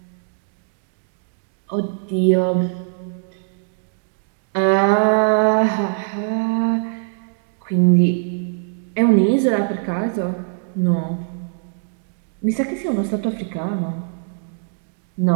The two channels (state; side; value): silent; left; 65 dB below the other